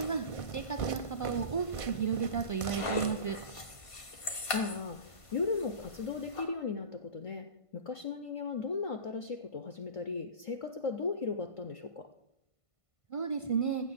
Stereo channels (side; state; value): right; late; 1.5 ms